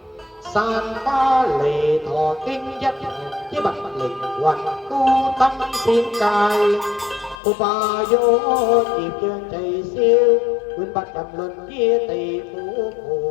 san ba lì thọ kinh dắt với bạch linh hoành tu tâm thiên cài cô bà vô nhịp chân chạy siêu quyên bạch đầm luận kia tỷ phú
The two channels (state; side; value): drops out; right; at 7.4 s